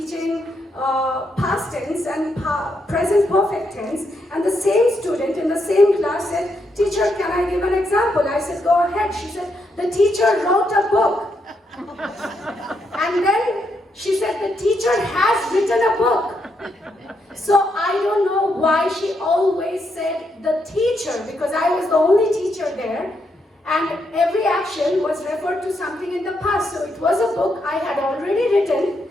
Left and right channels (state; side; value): normal; both; correlation 0.79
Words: past tense and present perfect tense, and the same student in the same class said, teacher, can I give an example? I said, go ahead. She said, the teacher wrote a book. And then she said, the teacher has written a book. So I don't know why she always said the teacher, because I was the only teacher there, and every action was referred to something in the past. So it was a book I had already written,